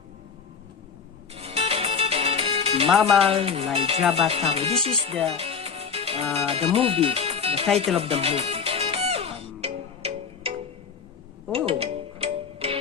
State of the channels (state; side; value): quieter; right; 6.1 dB